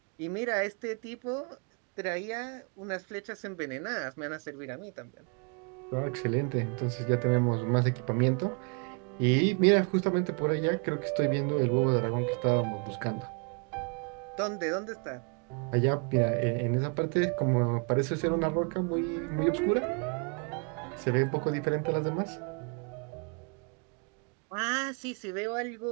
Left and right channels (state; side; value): quieter; left; 36.4 dB